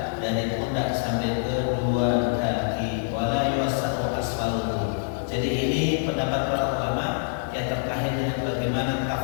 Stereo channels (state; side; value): silent; right; digital silence